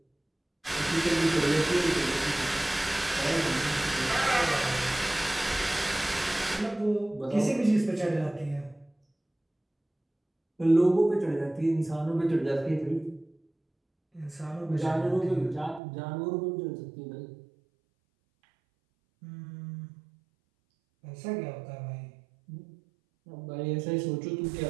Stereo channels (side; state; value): left; drops out; at 15.8 s